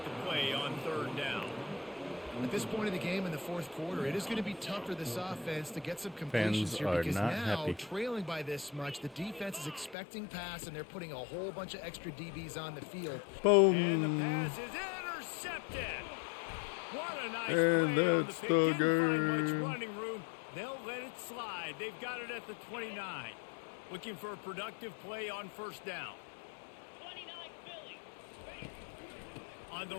the play on third down. At this point of the game in the fourth quarter, it is going to be tough for this offense to get some completions Fans here are because not now, happy. trailing by this much, the defense is expecting pass, and they're putting a whole bunch of extra DBs on the field. Boom. And the pass is intercepted. What a nice And play on the that's pick. the Didn't find much game. running room. They'll let it slide. They've got it at the 29. Looking for a productive play on first down. On the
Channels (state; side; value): drops out; right; at 10.0 s